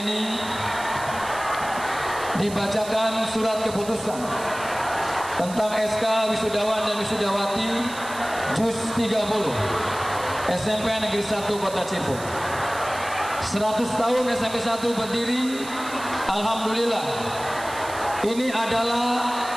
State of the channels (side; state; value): right; noise; hiss, 14 dB below the sound